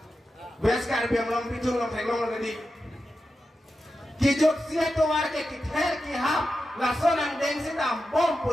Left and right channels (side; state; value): both; normal; correlation 0.90